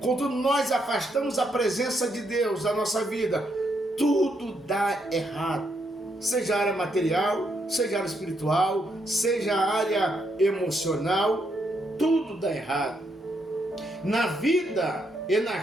quando nós afastamos a presença de Deus da nossa vida, tudo dá errado. Seja a área material, seja a área espiritual, seja a área emocional, tudo dá errado. Na vida e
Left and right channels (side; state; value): both; normal; correlation 0.77